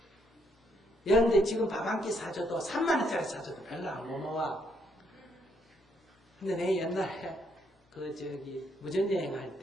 그런데 지금 밥 한 끼 사줘도 3만원짜리 사줘도 별로 안 고마워. 근데 내 옛날에 무전여행 할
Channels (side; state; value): both; normal; correlation 0.73